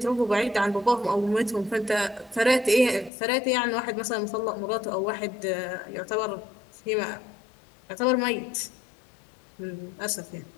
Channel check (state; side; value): drops out; right; at 3.1 s